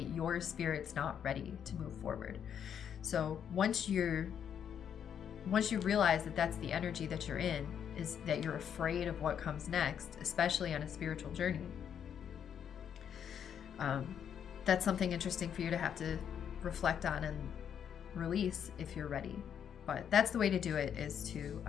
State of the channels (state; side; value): quieter; right; 8.5 dB